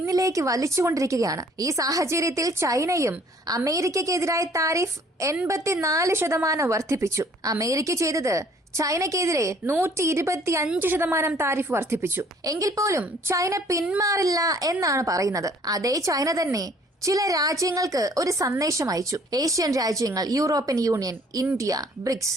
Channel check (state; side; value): normal; both; correlation 0.58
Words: വലിച്ചുകൊണ്ടിരിക്കുകയാണ്. ഈ സാഹചര്യത്തിൽ ചൈനയും അമേരിക്കയ്ക്കെതിരായ താരിഫ് 84% വർദ്ധിപ്പിച്ചു. അമേരിക്ക ചെയ്തത് ചൈനയ്ക്കെതിരെ 125% താരിഫ് വർദ്ധിപ്പിച്ചു. എങ്കിൽ പോലും ചൈന പിന്മാറില്ല എന്നാണ് പറയുന്നത്. അതേ ചൈന തന്നെ ചില രാജ്യങ്ങൾക്ക് ഒരു സന്ദേശം അയച്ചു. ഏഷ്യൻ രാജ്യങ്ങൾ, യൂറോപ്യൻ യൂണിയൻ, ഇന്ത്യ, ബ്രിക്സ്